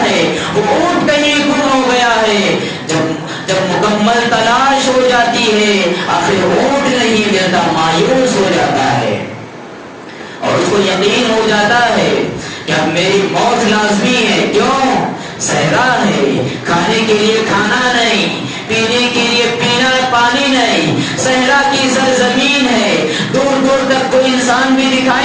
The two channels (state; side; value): identical; both; correlation 1.00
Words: ہے، وہ اونٹ کہیں گم ہو گیا ہے. جب مکمل تلاش ہو جاتی ہے آخر اونٹ نہیں ملتا، مایوس ہو جاتا ہے اور اس کو یقین ہو جاتا ہے کہ اب میری موت لازمی ہے. کیوں؟ صحرا ہے، کھانے کے لیے کھانا نہیں، پینے کے لیے پینا پانی نہیں، صحرا کی سرزمین ہے، دور دور تک کوئی انسان بھی